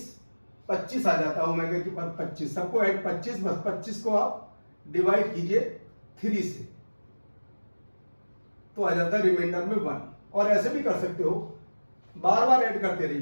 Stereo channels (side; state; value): both; inverted; correlation -1.00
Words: 25 आ जाता है ओमेगा की पावर 25, सबको ऐड 25, बस 25 को आप डिवाइड कीजिए 3 से, तो आ जाता है रिमाइंडर में 1। और ऐसे भी कर सकते हो, बार बार ऐड करते